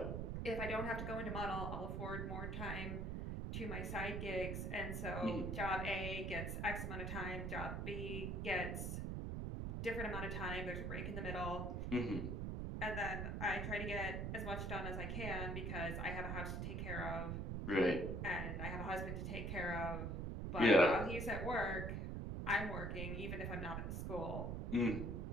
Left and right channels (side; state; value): right; noise; rumble, 2 dB below the sound